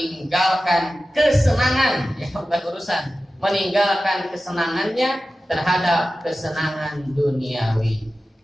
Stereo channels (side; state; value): both; normal; correlation 0.95